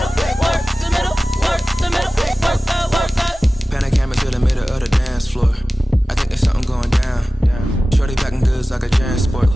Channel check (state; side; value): normal; both; correlation 0.96